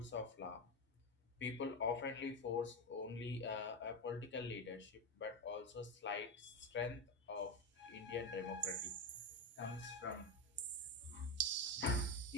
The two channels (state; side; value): normal; both; correlation 0.12